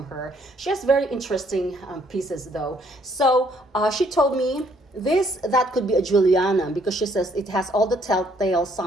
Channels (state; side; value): normal; both; correlation 0.66